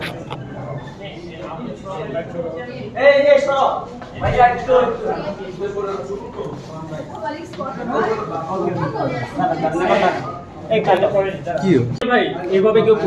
ভাই এইভাবে কেউ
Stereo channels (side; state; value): both; identical; correlation 1.00